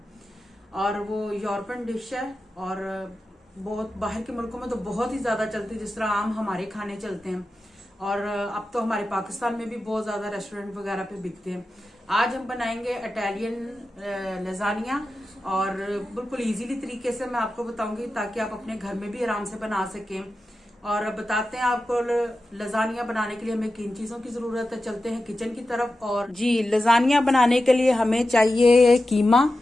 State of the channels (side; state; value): both; normal; correlation 0.92